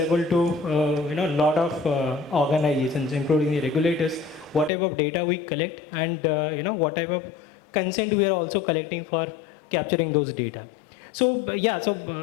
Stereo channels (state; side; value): drops out; right; at 4.7 s